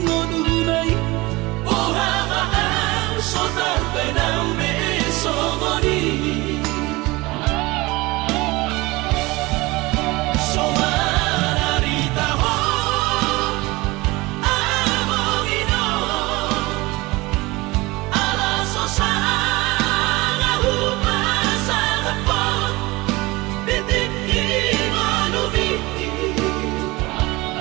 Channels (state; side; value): quieter; left; 22.1 dB